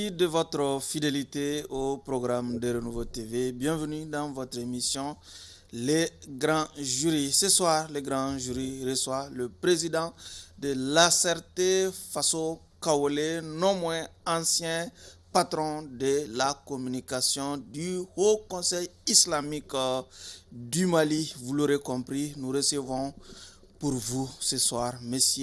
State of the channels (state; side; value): identical; both; correlation 1.00